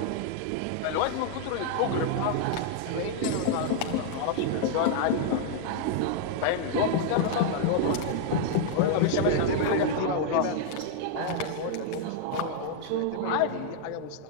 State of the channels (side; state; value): both; different; correlation 0.00